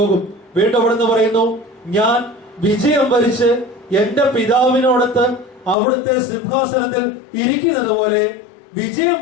വീണ്ടും അവിടുന്ന് പറയുന്നു, ഞാൻ വിജയം വരിച്ച് എന്റെ പിതാവിനോടൊത്ത് അവിടുത്തെ സിംഹാസനത്തിൽ ഇരിക്കുന്നത് പോലെ വിജയം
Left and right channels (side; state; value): right; drops out; at 5.8 s